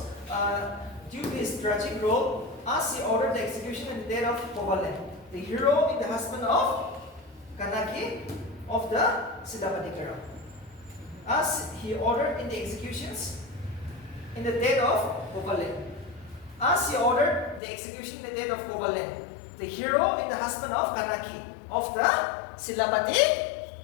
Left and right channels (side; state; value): right; drops out; at 17.6 s